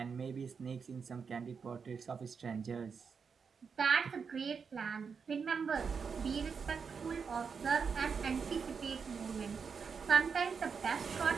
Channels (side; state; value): left; quieter; 5.9 dB